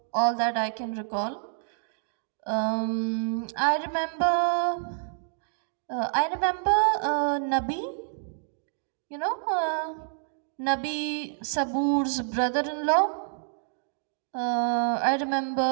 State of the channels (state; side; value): silent; left; digital silence